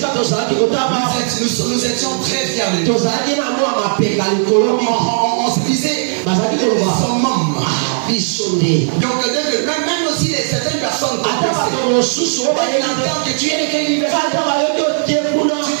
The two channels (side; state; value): left; silent; digital silence